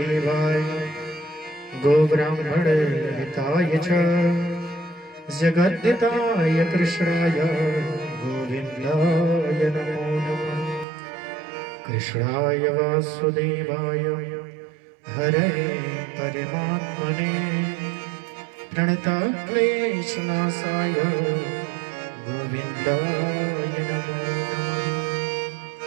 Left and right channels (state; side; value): drops out; left; at 10.9 s